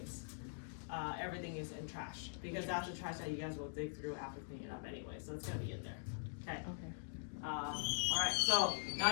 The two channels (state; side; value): silent; right; digital silence